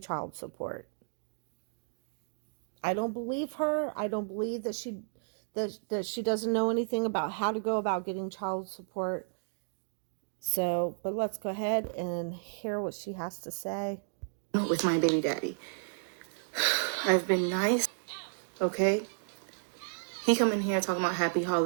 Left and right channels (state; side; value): silent; left; digital silence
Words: child support. I don't believe her. I don't believe that she doesn't know anything about how to go about getting child support. So, but let's go ahead and hear what she has to say. With my baby daddy. I've been nice, okay? He come in here talking about happy